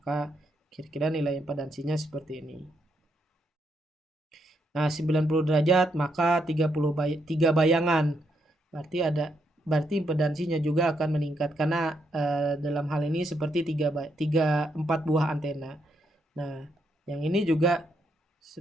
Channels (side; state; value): both; normal; correlation 0.78